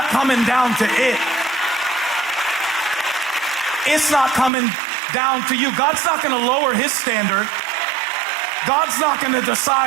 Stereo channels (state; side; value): drops out; left; at 4.5 s